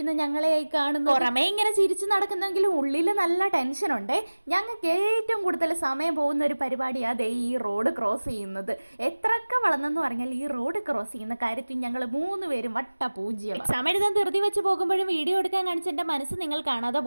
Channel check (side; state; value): both; inverted; correlation -1.00